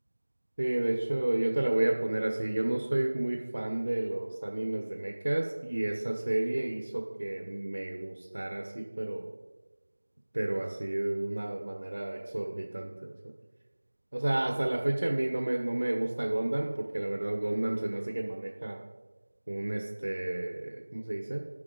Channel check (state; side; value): inverted; both; correlation -1.00